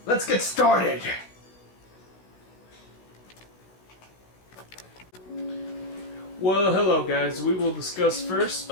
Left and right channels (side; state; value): right; late; 16 ms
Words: let's get started! Well, hello guys. We will discuss first